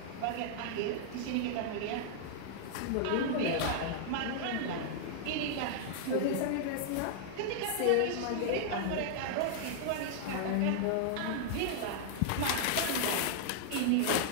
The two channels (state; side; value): different; both; correlation -0.01